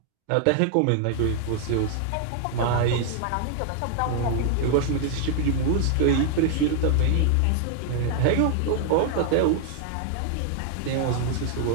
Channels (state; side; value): different; both; correlation 0.00